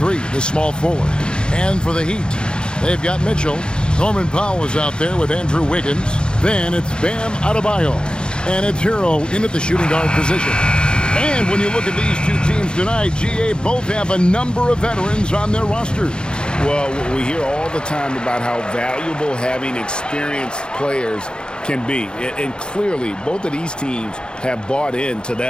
the small forward. And for the Heat, they've got Mitchell. Norman Powell is out there with Andrew Wiggins. Then it's Bam Adebayo. And it's Hero in at the shooting guard position. And when you look at these two teams tonight, GA both have a number of veterans on their roster. Well, we hear all the time about how valuable having experienced players can be. And clearly, both of these teams have bought into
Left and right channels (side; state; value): right; late; 0.050 ms